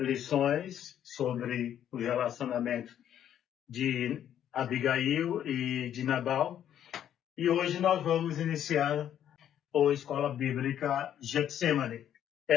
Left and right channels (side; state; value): right; quieter; 10.3 dB